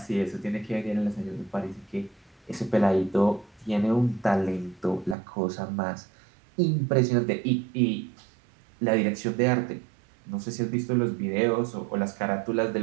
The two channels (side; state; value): left; drops out; at 5.2 s